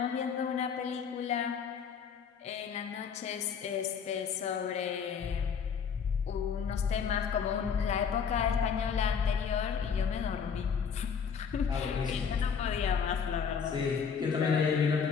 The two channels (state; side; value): quieter; right; 6.6 dB